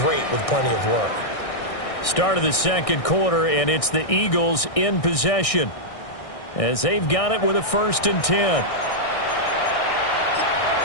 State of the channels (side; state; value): right; late; 1.6 ms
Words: with plenty of work. Start of the second quarter, and it's the Eagles in possession as they've got it with a 1st and 10.